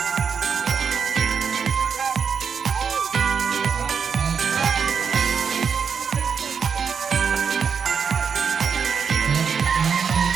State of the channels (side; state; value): left; quieter; 6.4 dB